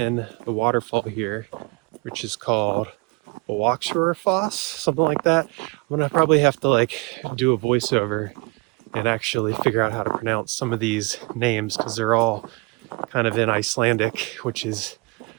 the waterfall here, which is called Foss, something like that. I'm gonna probably have to like do a voiceover and actually figure out how to pronounce some of these names because they're all kind of in Icelandic, which is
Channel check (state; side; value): quieter; left; 27.5 dB